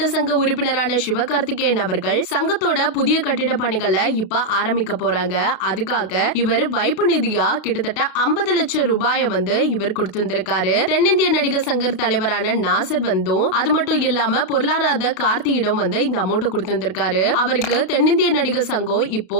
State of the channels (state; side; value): late; right; 32 ms